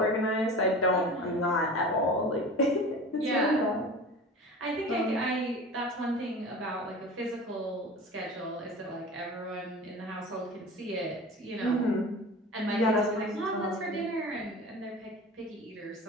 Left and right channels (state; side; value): normal; both; correlation 0.36